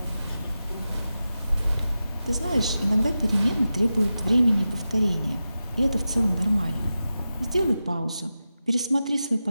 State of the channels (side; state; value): both; inverted; correlation -0.93